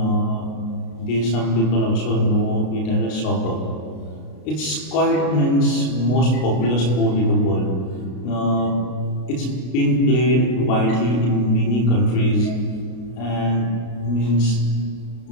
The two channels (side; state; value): right; late; 33 ms